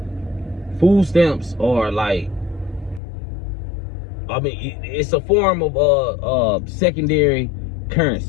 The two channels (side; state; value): right; drops out; at 3.0 s